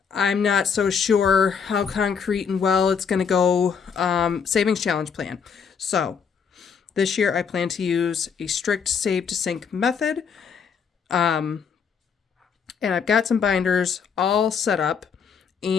I'm not so sure how concrete and well it's going to go savings challenge plan. So this year I plan to use a strict save to sync method. And I've got some binders all set up.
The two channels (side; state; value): right; quieter; 6.4 dB